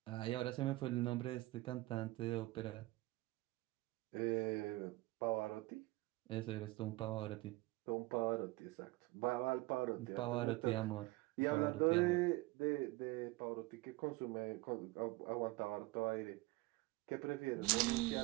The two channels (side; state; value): left; quieter; 20.9 dB